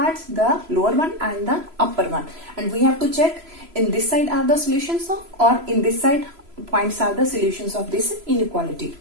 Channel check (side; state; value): left; late; 3.0 ms